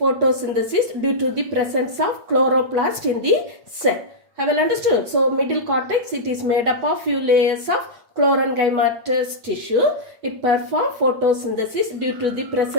due to the presence of chloroplast in the cell. Have you understood? So, middle cortex, it is made up of few layers of chlorenchymatous tissue. It perform photosynthesis due to the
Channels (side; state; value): left; late; 8.1 ms